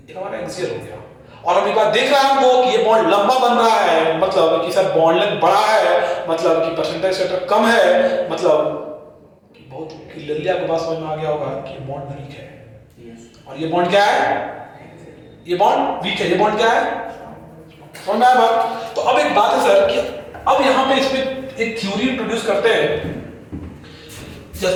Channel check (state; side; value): identical; both; correlation 1.00